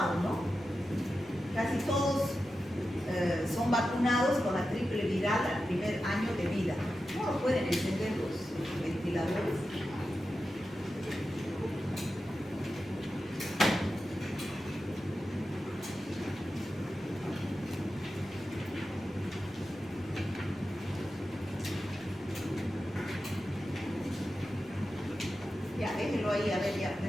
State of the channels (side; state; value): both; normal; correlation 0.91